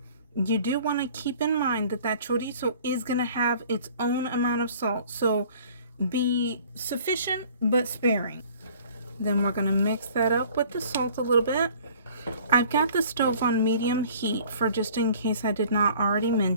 You do want to keep in mind that that chorizo is going to have its own amount of salt, so be sufficient but sparing. Then we're going to mix that up with the salt a little bit. I've got the stove on medium heat for just in case I did not already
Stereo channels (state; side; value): inverted; both; correlation -0.51